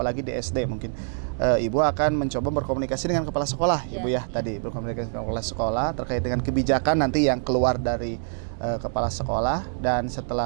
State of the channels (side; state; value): left; silent; digital silence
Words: di SD mungkin. Ibu akan mencoba berkomunikasi dengan kepala sekolah, Ibu ya. Tadi berkomunikasi dengan kepala sekolah terkait dengan kebijakan nanti yang keluar dari kepala sekolah, dan setelah